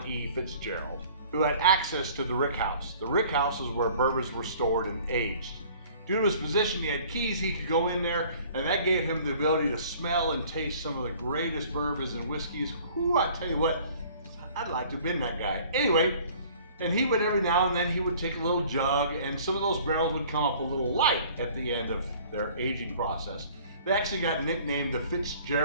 E. Fitzgerald, who had access to the rick house. The rick house is where bourbons were stored and aged. Due to his position, he had keys, he could go in there, and that gave him the ability to smell and taste some of the greatest bourbons and whiskeys. Whoo, I tell you what, I'd like to have been that guy. Anyway, and he would every now and then, he would take a little jug, and some of those barrels would come up a little light at the end of their aging process. They actually got nicknamed the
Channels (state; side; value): inverted; both; correlation -0.51